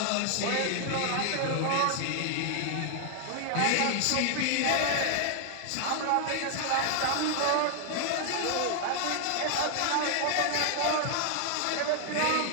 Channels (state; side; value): different; both; correlation 0.00